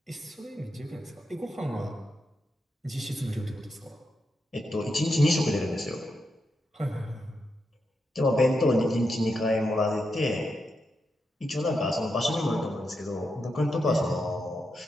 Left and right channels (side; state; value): both; normal; correlation 0.85